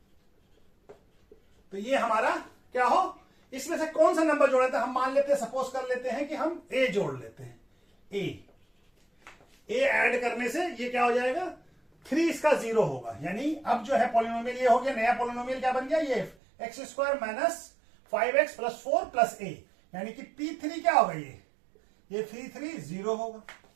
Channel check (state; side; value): drops out; left; at 16.4 s